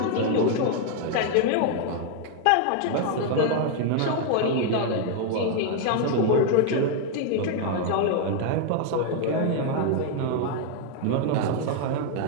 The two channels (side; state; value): both; different; correlation 0.00